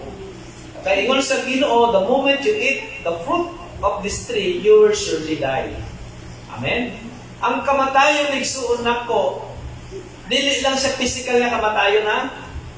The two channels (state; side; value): identical; both; correlation 1.00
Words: Kaya ingon sa Ginoo, the moment you eat the fruit of this tree, you will surely die. Amen? Ang kamatayon igsuon nako, dili lang siya physical na kamatayon na.